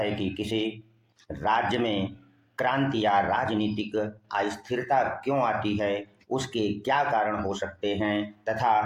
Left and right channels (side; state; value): both; identical; correlation 1.00